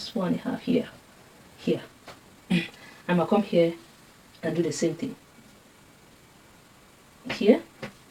1.5 here. I'm going to come here and do the same thing here.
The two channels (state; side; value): identical; both; correlation 1.00